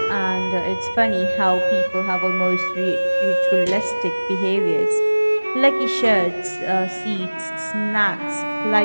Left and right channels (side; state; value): both; inverted; correlation -1.00